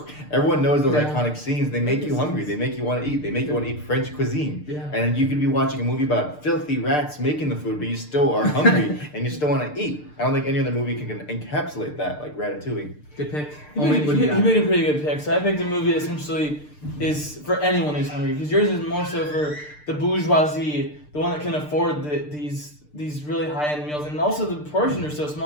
Everyone knows those iconic scenes. They make you hungry. They make you want to eat. They make you want to eat French cuisine. Yeah. And you could be watching a movie about filthy rats making the food, but you still are hungry and you still want to eat. I don't think any other movie can encapsulate that like Ratatouille. Good pick. He Omid, what do you got? made a pretty good pick. So I picked a movie that essentially is for anyone who's hungry, because yours is more so for the bourgeoisie, the one that can afford these really high-end meals, and also the portions are so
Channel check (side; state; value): right; late; 6.7 ms